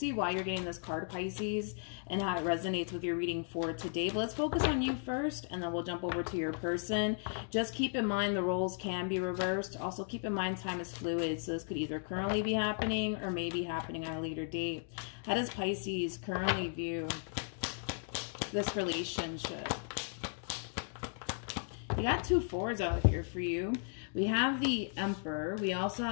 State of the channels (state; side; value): silent; right; 54 dB below the other